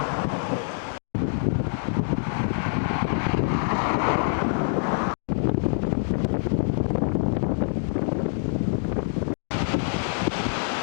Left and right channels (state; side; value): silent; right; digital silence